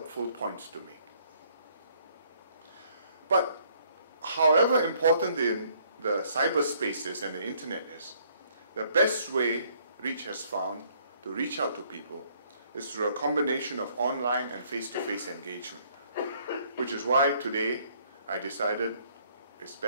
points to make. But however important the cyberspace is and the internet is, the best way Reach has found to reach out to people is through a combination of online and face-to-face engagement, which is why today I decided it's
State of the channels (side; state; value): both; inverted; correlation -0.64